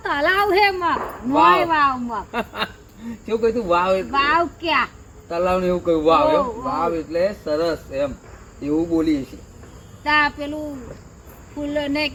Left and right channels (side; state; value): both; identical; correlation 1.00